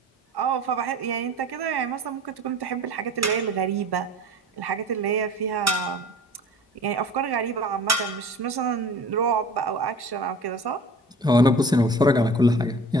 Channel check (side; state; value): both; normal; correlation 0.43